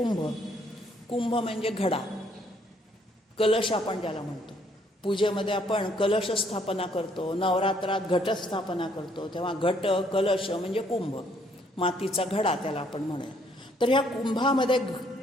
कुंभ म्हणजे घडा, कलश आपण ज्याला म्हणतो. पूजेमध्ये आपण कलश स्थापना करतो, नवरात्रात घटस्थापना करतो, तेव्हा घट कलश म्हणजे कुंभ, मातीचा घडा त्याला आपण म्हणूया. तर ह्या कुंभामध्ये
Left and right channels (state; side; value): normal; both; correlation 0.67